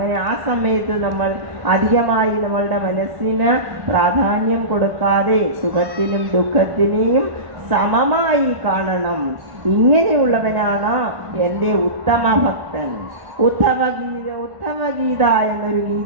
ആ സമയത്ത് നമ്മൾ അധികമായി നമ്മളുടെ മനസ്സിന് പ്രാധാന്യം കൊടുക്കാതെ സുഖത്തിനും ദുഃഖത്തിനെയും സമമായി കാണണം. ഇങ്ങനെയുള്ളവനാണ് എൻ്റെ ഉത്തമ ഭക്തൻ. ഉദ്ധവഗീത എന്നൊരു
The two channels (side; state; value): left; late; 1.5 ms